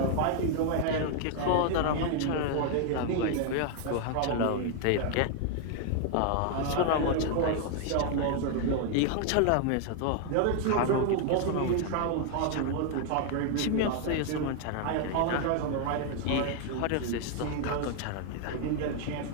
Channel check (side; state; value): both; different; correlation 0.00